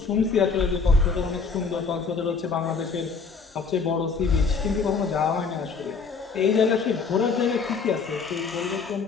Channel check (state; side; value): quieter; right; 5.0 dB